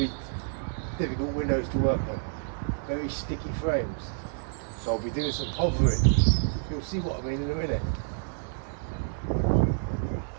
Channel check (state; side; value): silent; left; 59 dB below the other